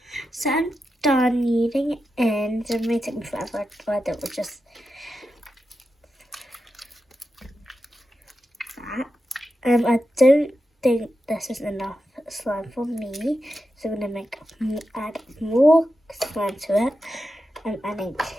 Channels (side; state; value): both; normal; correlation 0.89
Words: So I'm done kneading it in. So it may take me forever, but it was just that. I don't think this is enough slime for me, so I'm gonna add more slime to it. I'm adding